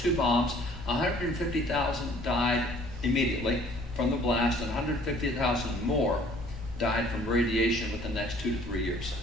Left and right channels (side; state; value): both; normal; correlation 0.55